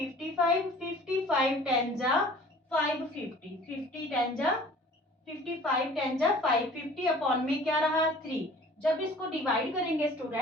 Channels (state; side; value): normal; both; correlation 0.48